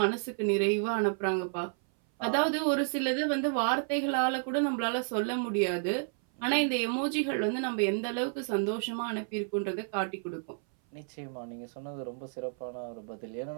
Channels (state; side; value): silent; left; 57 dB below the other